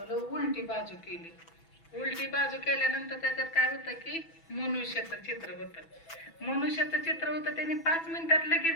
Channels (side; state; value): right; late; 6.1 ms